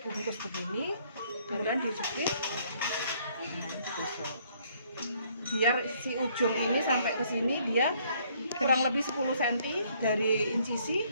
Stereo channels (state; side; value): inverted; both; correlation -0.65